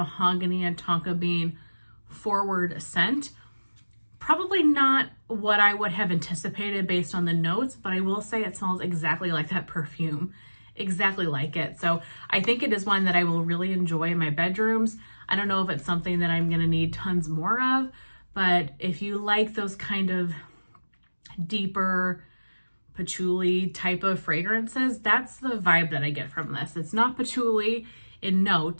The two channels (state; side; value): inverted; both; correlation -1.00